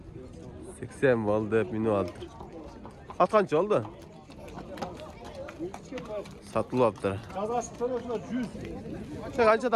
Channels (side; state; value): both; identical; correlation 1.00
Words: 80 oldu, hep minü aldı. At kança oldu? Satılıptır. Kazası soruyorsunuz 100. Sen